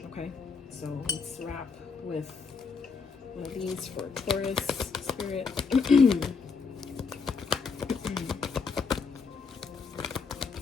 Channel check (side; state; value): right; quieter; 5.1 dB